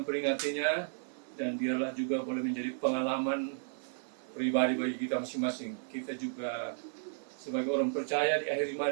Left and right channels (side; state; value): left; silent; 55 dB below the other